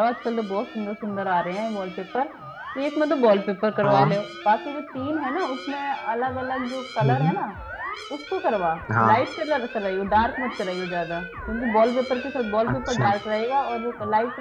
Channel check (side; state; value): both; identical; correlation 1.00